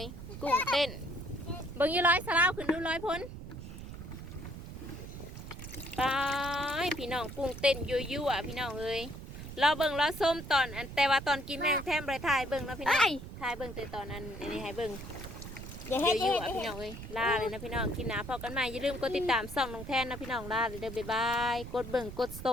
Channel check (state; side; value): noise; right; rumble, 11 dB below the sound